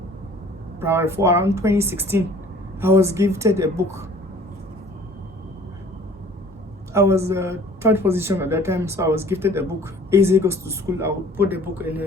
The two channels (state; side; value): normal; both; correlation 0.50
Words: primary 4, around 2016. I was gifted a book. I was third position at that time, so I was gifted a book. Eze Goes to School. I would put the book in